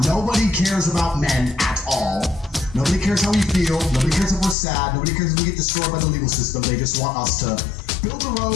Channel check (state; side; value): drops out; right; at 4.5 s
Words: nobody cares about men at all. Nobody cares how we feel, nobody cares if we're sad, nobody cares if we get destroyed by the legal system. They just want us to build the